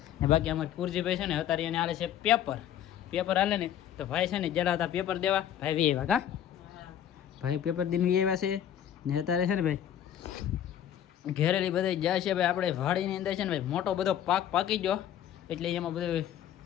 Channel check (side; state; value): right; quieter; 10.5 dB